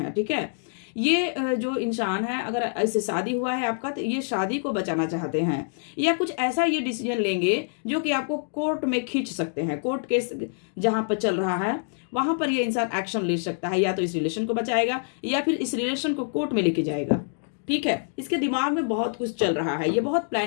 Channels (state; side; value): silent; right; digital silence